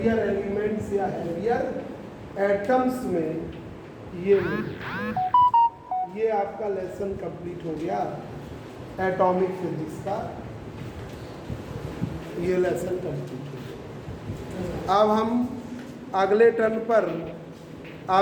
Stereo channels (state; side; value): identical; both; correlation 1.00